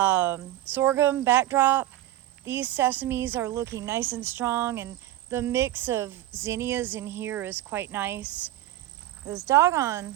backdrop. These sesames are looking nice and strong, and the mix of zinnias in here is quite nice. Those doggone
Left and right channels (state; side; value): quieter; left; 14.7 dB